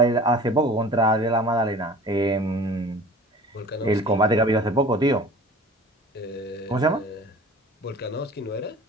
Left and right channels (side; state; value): both; normal; correlation 0.42